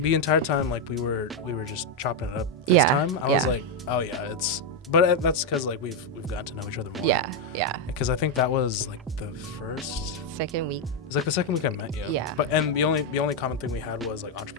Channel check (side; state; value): both; normal; correlation 0.03